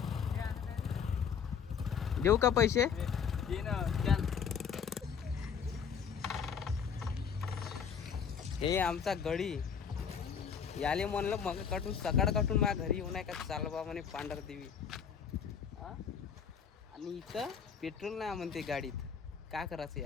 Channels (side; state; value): right; quieter; 7.0 dB